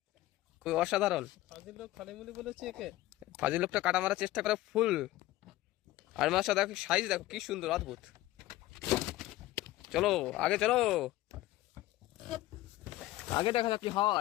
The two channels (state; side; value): quieter; right; 16.4 dB